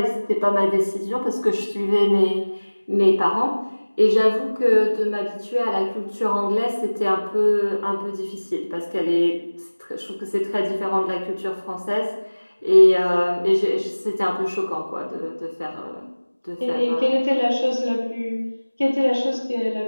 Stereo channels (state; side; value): inverted; both; correlation -1.00